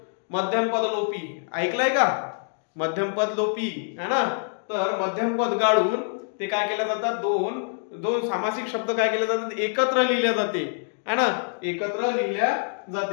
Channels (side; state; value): right; silent; digital silence